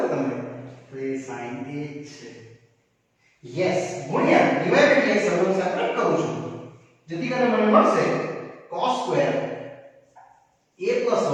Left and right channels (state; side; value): identical; both; correlation 1.00